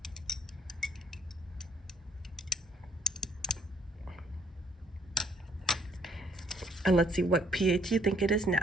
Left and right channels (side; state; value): both; normal; correlation 0.65